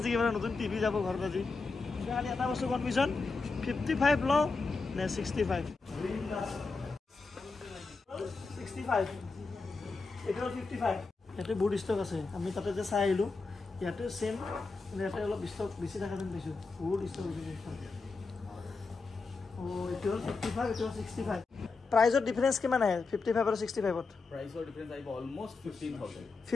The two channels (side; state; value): right; quieter; 4.1 dB